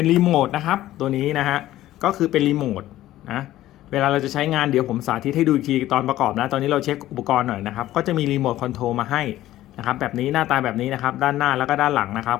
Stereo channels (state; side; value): quieter; right; 14.5 dB